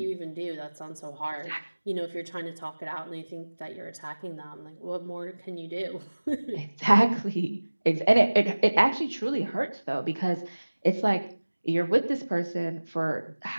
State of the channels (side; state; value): both; inverted; correlation -1.00